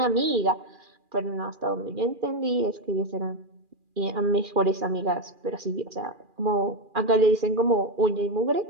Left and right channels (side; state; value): left; late; 2.4 ms